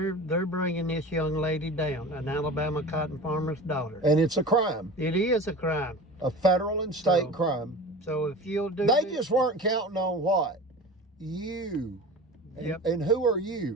bringing this young lady down, an Alabama cotton farmer's daughter. And it's a crime. It is a crime. A federal and state So- crime. So if you'll do They this- just weren't counting on what? You. And, Yep. and who are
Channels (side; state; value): both; normal; correlation 0.35